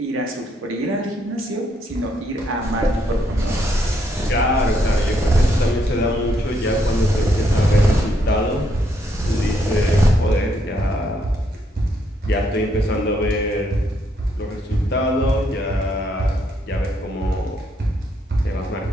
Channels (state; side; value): normal; both; correlation 0.74